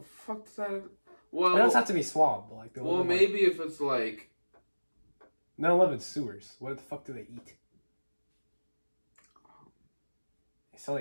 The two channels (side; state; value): both; inverted; correlation -1.00